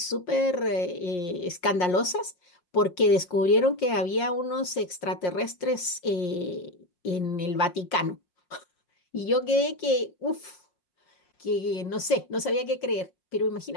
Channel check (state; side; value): late; right; 5.6 ms